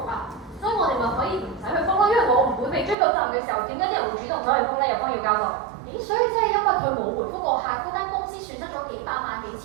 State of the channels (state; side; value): drops out; left; at 3.0 s